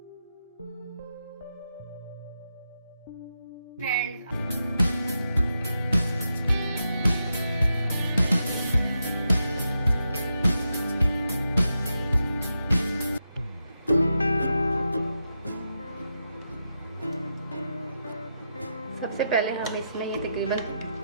फ्रेंड्स, सबसे पहले हम इसमें ये तकरीबन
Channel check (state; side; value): inverted; both; correlation -0.86